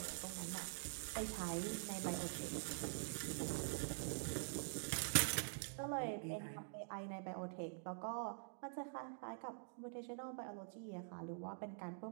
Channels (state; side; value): silent; left; digital silence